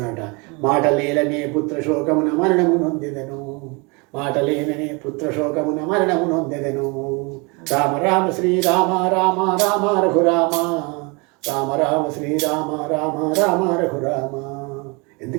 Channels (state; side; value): quieter; left; 29.5 dB